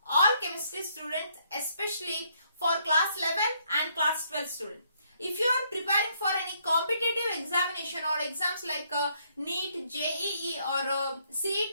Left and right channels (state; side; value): inverted; both; correlation -0.70